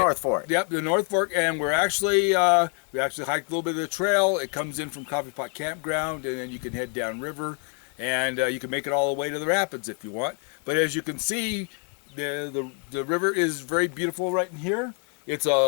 Fork. Yep, the North Fork, and we actually hiked a little bit of the trail. It comes in from Coffee Pot Campground, and then you can head down river, and you can make it all the way to the rapids if you want. But as you can see, the river is very beautiful right in here. It's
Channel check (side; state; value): right; quieter; 39.2 dB